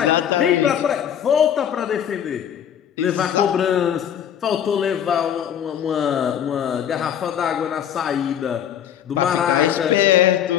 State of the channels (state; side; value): quieter; right; 9.4 dB